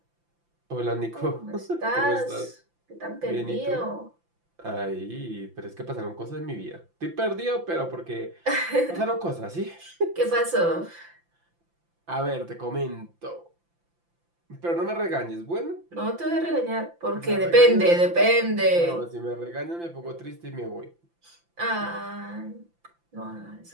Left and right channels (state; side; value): late; left; 5.9 ms